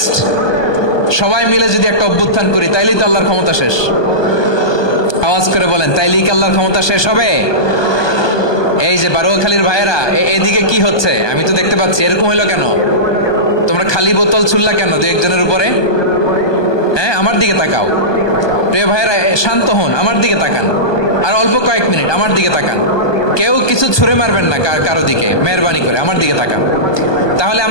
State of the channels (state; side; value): late; right; 1.2 ms